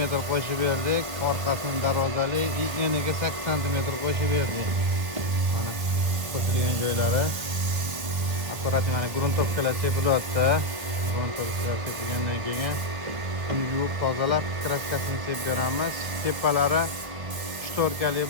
qo'shib berdik. Orqasini darvozali, eniga 8 cm qo'shib berdik. Mana qo'shilgan joylari. Akkurat mana gruntovkalar sepilyapti. Gruntovkalar sepilgandan keyin yuvib tozalab kraskasini sepib beramiz. Tepalari shtorkali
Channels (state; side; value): late; left; 1.6 ms